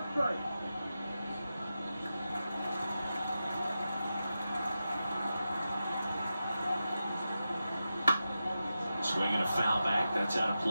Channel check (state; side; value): inverted; both; correlation -0.91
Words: strike. Swinging a foul back. That's out of